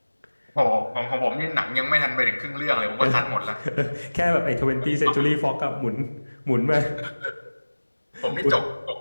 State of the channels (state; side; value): inverted; both; correlation -1.00